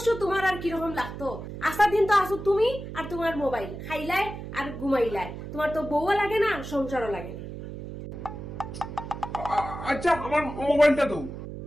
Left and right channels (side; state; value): right; noise; hum, 9 dB below the sound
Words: তোমার আর কিরকম লাগতো? আসার দিন তো আসো তুমি আর তোমার মোবাইল খাইলাই আর ঘুমাইলাই। তোমার তো বউও লাগে না, সংসারও লাগে না। আচ্ছা আমার মোবাইলটা দাও।